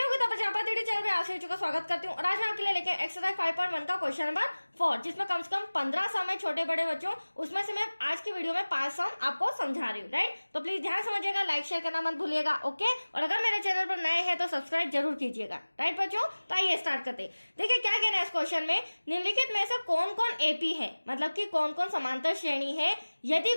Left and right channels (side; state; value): both; inverted; correlation -1.00